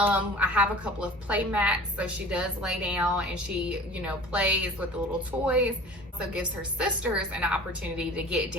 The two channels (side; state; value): both; normal; correlation 0.43